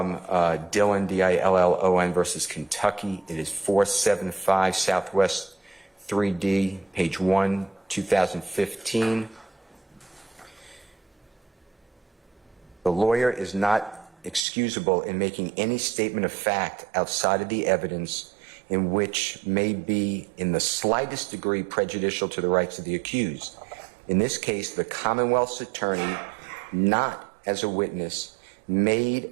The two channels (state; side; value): drops out; left; at 14.4 s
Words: Dillon, D-I-L-L-O-N versus Kentucky. It is 475 Southwest 3D, page 1, 2015. The lawyer is not excusable in making any statement of fact outside of the evidence in which may be in the slightest degree prejudicial to the rights of the accused. In this case, the Commonwealth's attorney, not as a witness, made